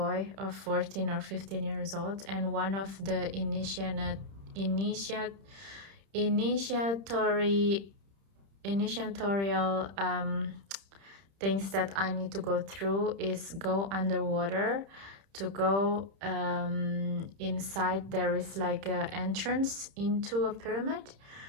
of 14 or 15 years old, and one of the initiatorial things that I need to go through is go underwater. To go inside, there is like an entrance into a pyramid,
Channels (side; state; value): left; late; 30 ms